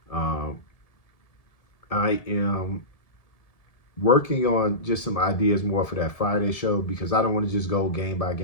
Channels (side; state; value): right; late; 1.7 ms